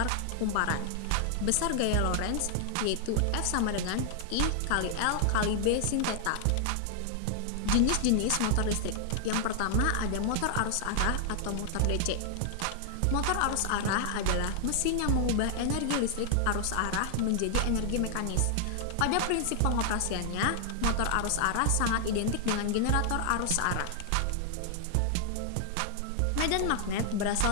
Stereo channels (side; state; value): both; different; correlation 0.00